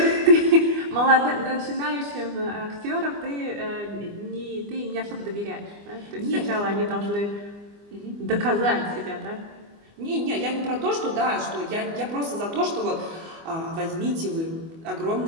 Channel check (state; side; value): late; left; 25 ms